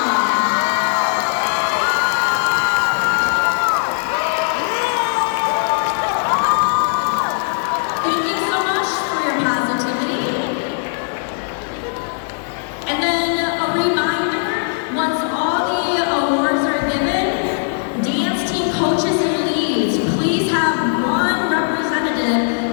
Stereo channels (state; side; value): silent; right; 62 dB below the other